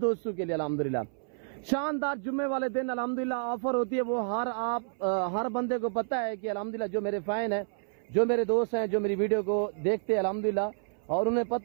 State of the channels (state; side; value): silent; left; 58 dB below the other